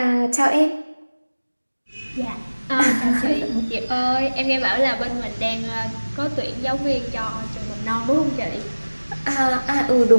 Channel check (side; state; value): both; inverted; correlation -1.00